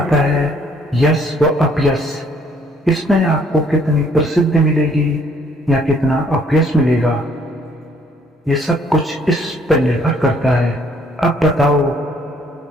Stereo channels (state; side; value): normal; both; correlation 0.64